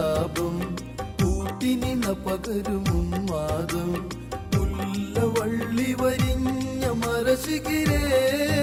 കൂട്ടിനിണ പകരുമും മാതം മുല്ലവള്ളി വരിഞ്ഞ മരശിഖിരേ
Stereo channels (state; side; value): identical; both; correlation 1.00